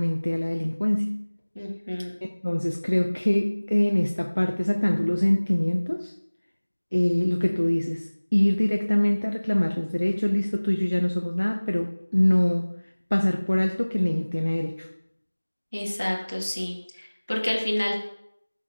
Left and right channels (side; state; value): both; inverted; correlation -1.00